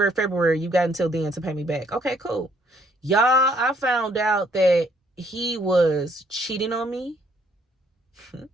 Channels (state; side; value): normal; both; correlation 0.66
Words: February, you got until then to pay me back. Okay, cool. Y'all, I found out that he was cheating on me.